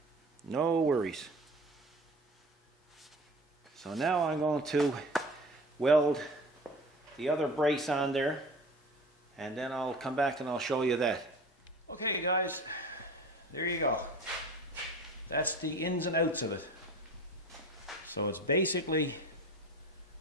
no worries. So now I'm going to weld the other brace on there, and then I'll come back and I'll show you that. Okay guys, there you go. That's the ins and outs of it. So it's basically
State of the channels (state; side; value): normal; both; correlation 0.38